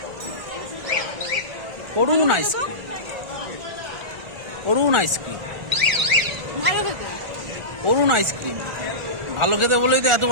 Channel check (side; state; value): left; late; 1.4 ms